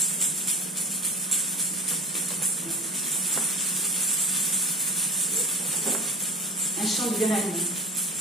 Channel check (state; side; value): normal; both; correlation 0.37